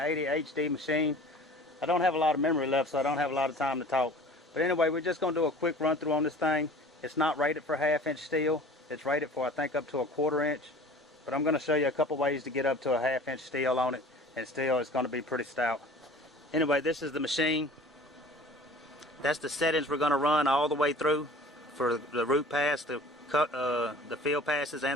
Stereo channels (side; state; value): both; normal; correlation 0.45